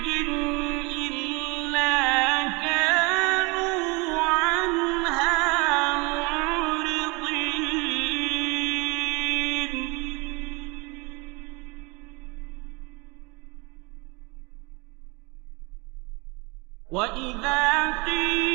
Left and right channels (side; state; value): left; quieter; 27.8 dB